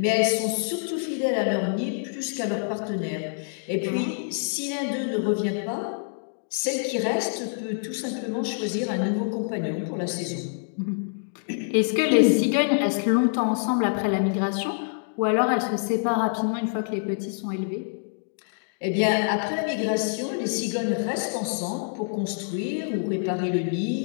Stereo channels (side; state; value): right; silent; digital silence